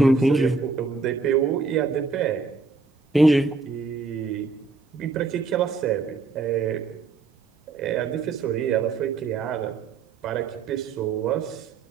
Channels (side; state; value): left; quieter; 4.3 dB